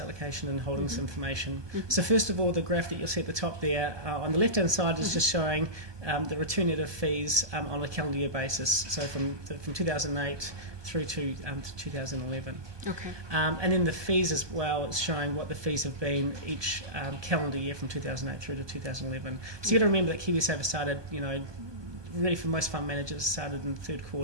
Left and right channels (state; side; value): late; left; 1.2 ms